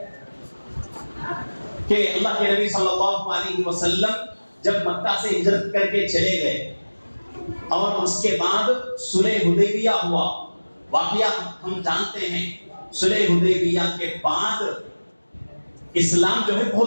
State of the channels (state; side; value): inverted; both; correlation -1.00